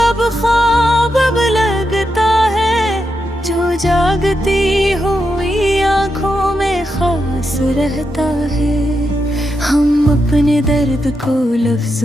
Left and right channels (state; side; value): normal; both; correlation 0.85